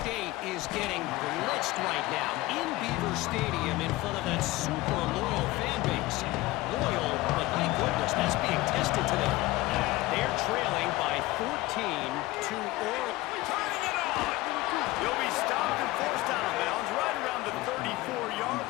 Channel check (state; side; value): quieter; right; 19.1 dB